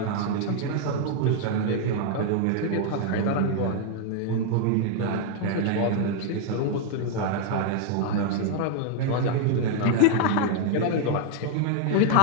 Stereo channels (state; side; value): different; both; correlation 0.00